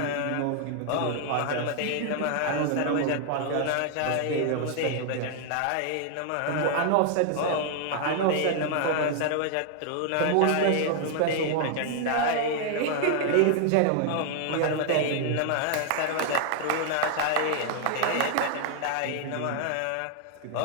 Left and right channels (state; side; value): different; both; correlation 0.00